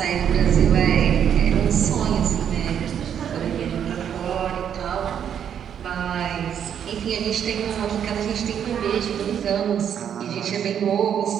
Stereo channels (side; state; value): left; quieter; 8.8 dB